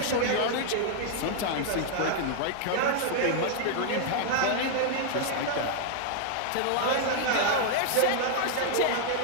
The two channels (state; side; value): different; both; correlation 0.00